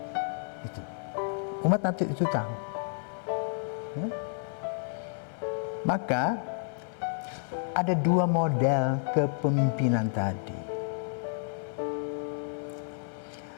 Itu. Umat nanti itu tahu. Ya? Maka ada dua model kepemimpinan tadi.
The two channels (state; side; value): silent; right; 57 dB below the other